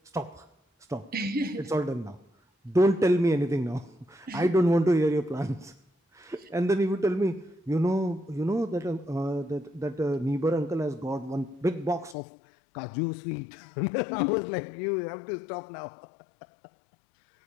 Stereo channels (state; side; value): drops out; right; at 12.2 s